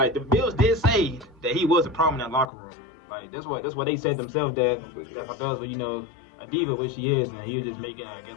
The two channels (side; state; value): right; drops out; at 2.5 s